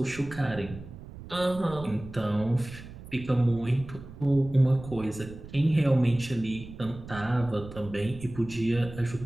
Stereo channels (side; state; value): right; noise; rumble, 14 dB below the sound